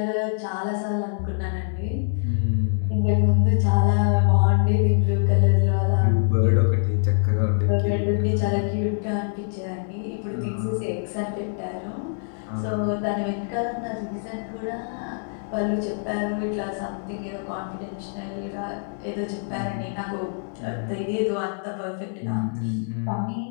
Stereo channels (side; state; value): right; silent; 62 dB below the other